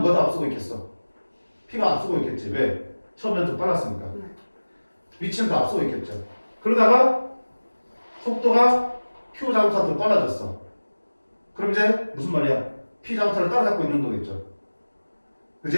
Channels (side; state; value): both; inverted; correlation -1.00